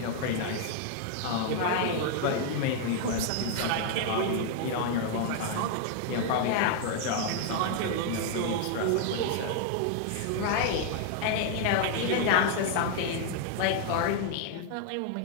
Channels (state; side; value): different; both; correlation 0.00